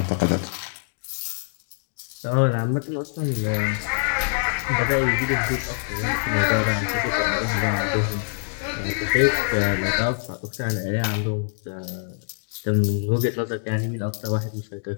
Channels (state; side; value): silent; right; digital silence